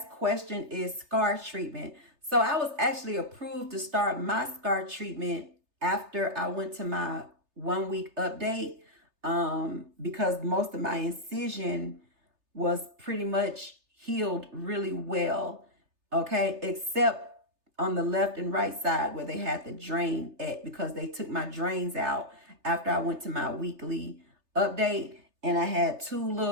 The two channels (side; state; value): left; late; 3.3 ms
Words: question is scar treatment. So I was actually approved to start my scar treatment after I went to my 1-week update because most of my incision was pretty much healed really well, okay, except on the left and right side where they had the drain at because they took my drains out after I went to my weekly update, and I had 2